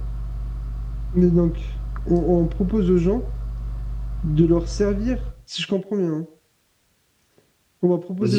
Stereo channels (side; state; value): both; identical; correlation 1.00